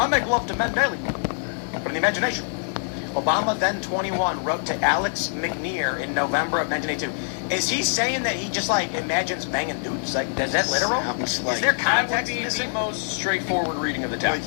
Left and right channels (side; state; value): right; silent; digital silence